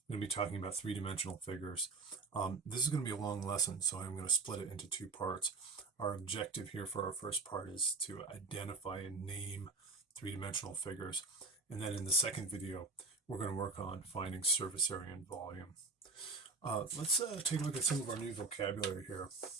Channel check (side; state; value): left; quieter; 3.8 dB